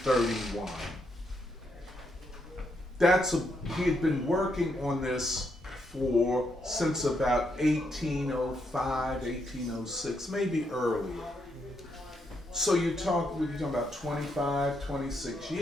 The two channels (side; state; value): both; normal; correlation 0.78